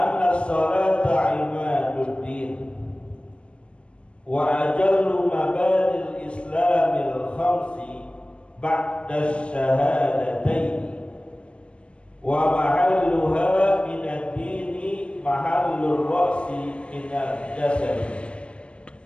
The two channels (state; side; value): late; right; 0.059 ms